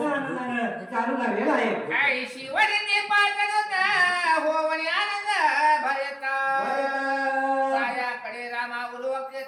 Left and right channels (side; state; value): both; identical; correlation 1.00